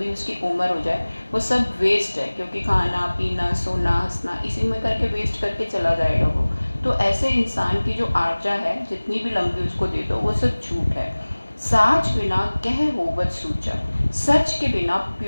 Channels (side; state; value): both; inverted; correlation -1.00